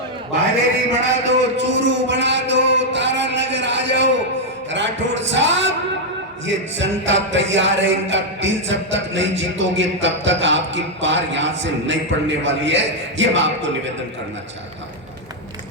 बालेरी बना दो, चूरू बना दो, तारा नगर आ जाओ। राठौड़ साहब ये जनता तैयार है, इनका दिल जब तक नहीं जीतोगे तब तक आपकी पार यहां से नहीं पड़ने वाली है। ये मैं आपको निवेदन करना चाहता हूं।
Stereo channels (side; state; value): both; normal; correlation -0.01